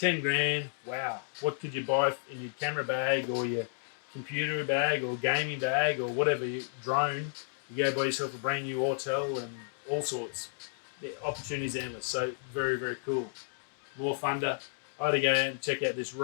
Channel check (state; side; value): silent; right; digital silence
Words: grand, wow. What could you buy in your camera bag or your computer bag or gaming bag or whatever, your drone? You go buy yourself a brand new hotel and all sorts. The opportunities endless. So very, very cool. More thunder. I had to go out and check out this